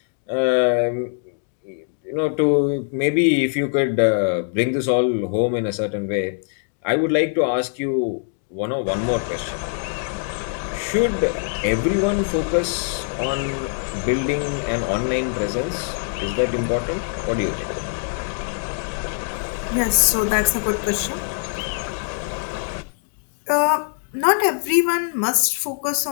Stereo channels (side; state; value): right; silent; digital silence